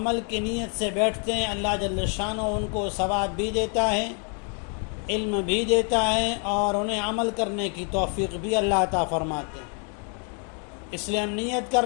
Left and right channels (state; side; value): quieter; right; 40.0 dB